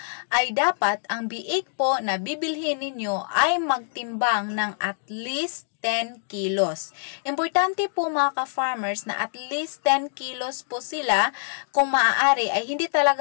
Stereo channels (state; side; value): silent; right; digital silence